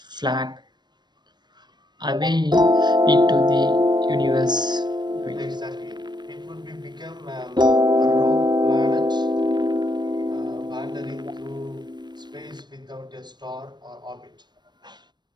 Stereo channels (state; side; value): late; left; 0.21 ms